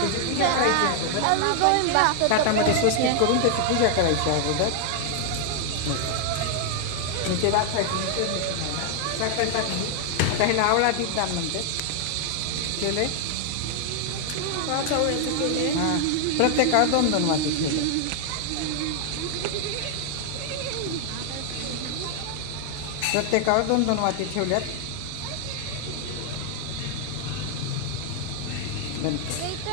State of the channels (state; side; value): different; both; correlation 0.00